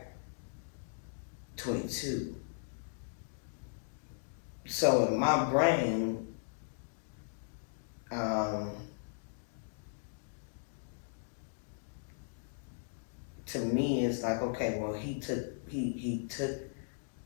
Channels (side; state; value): right; silent; digital silence